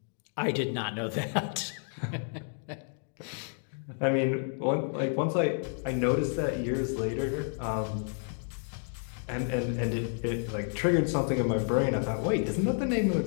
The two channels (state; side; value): silent; right; 57 dB below the other